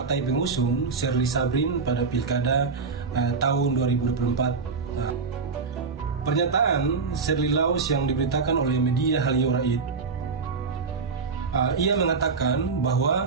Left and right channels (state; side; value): quieter; left; 4.9 dB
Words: pengusung Sherly Sabrin pada Pilkada tahun 2024. Pernyataan Sherly Laos yang diberitakan oleh media Halio Raid, ia mengatakan